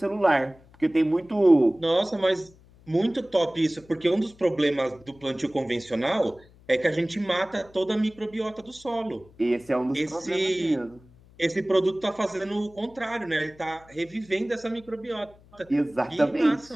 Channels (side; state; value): left; noise; hum, 26 dB below the sound